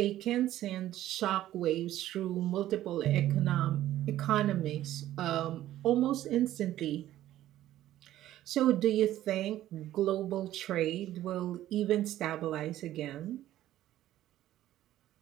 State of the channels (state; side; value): quieter; left; 13.5 dB